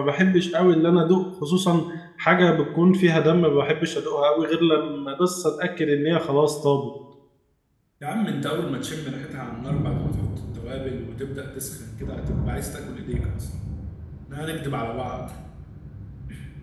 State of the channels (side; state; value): both; identical; correlation 1.00